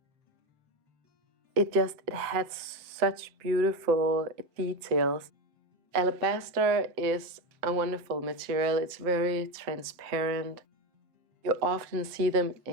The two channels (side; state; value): left; late; 7.7 ms